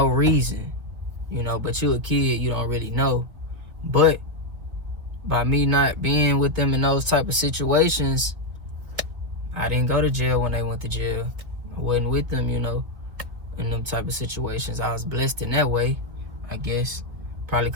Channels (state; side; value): late; left; 2.0 ms